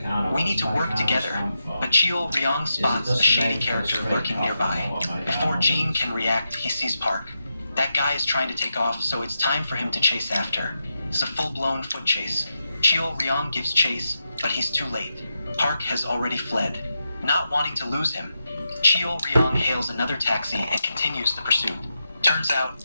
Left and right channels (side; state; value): both; inverted; correlation -0.86